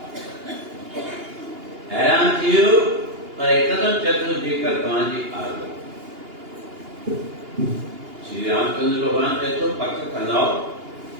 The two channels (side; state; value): left; late; 2.8 ms